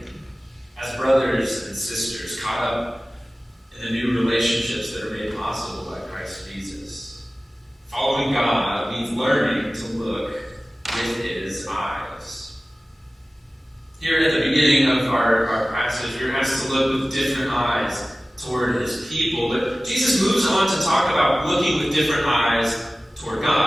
as brothers and sisters caught up in the new relationships that are made possible by Christ Jesus. Following God means learning to look with his eyes. Here at the beginning of our passage, we're asked to look with different eyes toward his people. But Jesus moves on to talk about looking with different eyes toward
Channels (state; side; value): normal; both; correlation 0.97